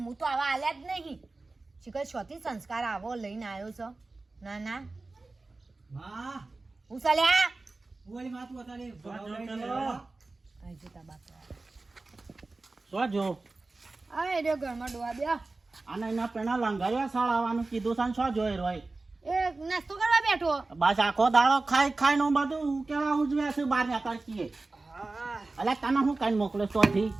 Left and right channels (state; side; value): quieter; left; 3.4 dB